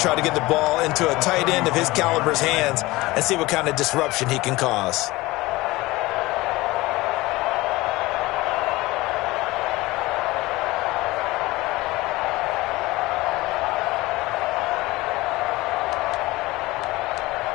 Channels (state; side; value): quieter; right; 20.1 dB